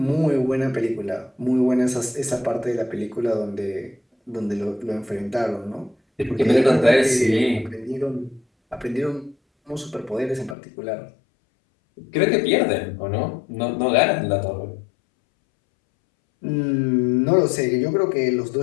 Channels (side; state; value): right; drops out; at 10.6 s